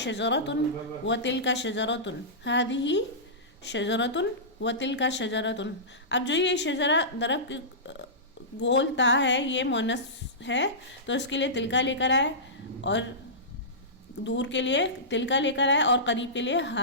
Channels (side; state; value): both; normal; correlation -0.18